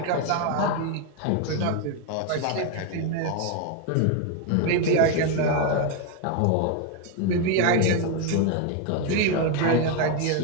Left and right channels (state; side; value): different; both; correlation 0.02